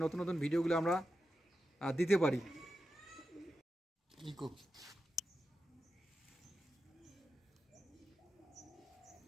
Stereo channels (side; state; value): both; normal; correlation 0.90